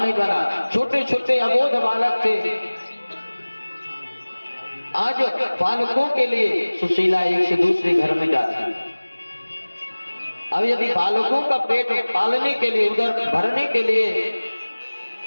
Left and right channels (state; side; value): inverted; both; correlation -1.00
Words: बना, छोटे छोटे अबोध बालक थे। आज बालकों के लिए सुशीला एक से दूसरे घर में जाती। अब यदि बालकों का पेट पालने के लिए, उधर भरने के लिए